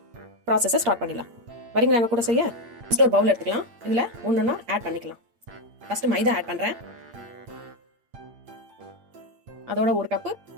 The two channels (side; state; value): left; late; 8.7 ms